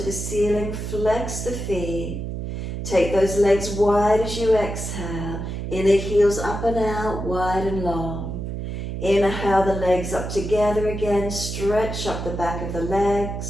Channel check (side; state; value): right; noise; hum, 5 dB below the sound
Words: the ceiling. Flex the feet. Take those legs wide as you exhale. Inner heels up and out, wide and long. Inhale the legs up together again. Stretch up the back of the